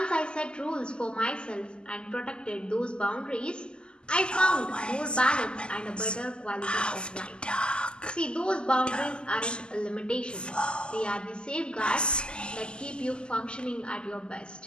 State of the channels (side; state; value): right; late; 0.048 ms